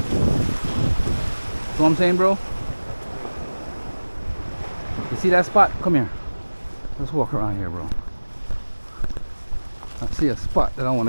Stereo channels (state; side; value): inverted; both; correlation -1.00